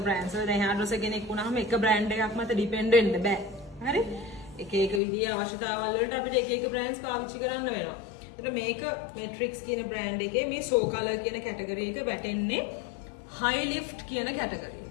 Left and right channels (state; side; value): drops out; right; at 5.0 s